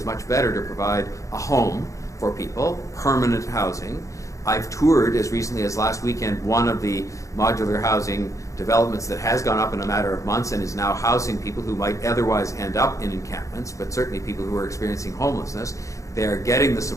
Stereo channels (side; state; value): right; late; 0.15 ms